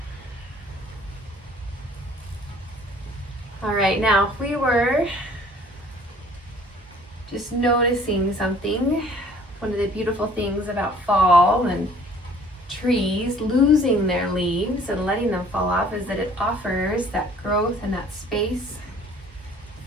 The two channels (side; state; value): both; normal; correlation 0.54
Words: All right, now if we were just noticing something, one of the beautiful things about fall and trees losing their leaves and letting them fall off is that it offers that growth and that space